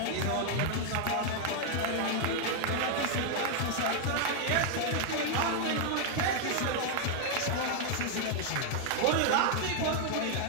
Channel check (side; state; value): both; different; correlation 0.00